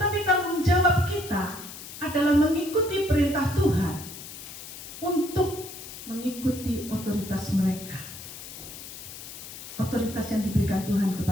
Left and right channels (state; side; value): noise; left; hiss, 12 dB below the sound